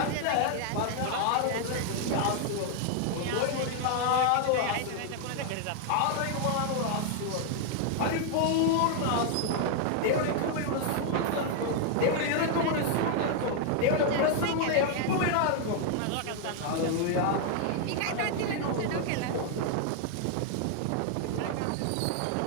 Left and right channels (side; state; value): both; different; correlation 0.00